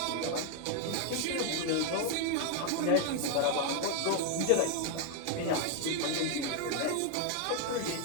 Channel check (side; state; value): both; different; correlation 0.01